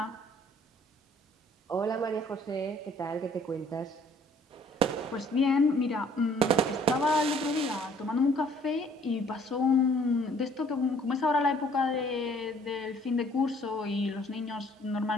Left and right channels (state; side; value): normal; both; correlation 0.59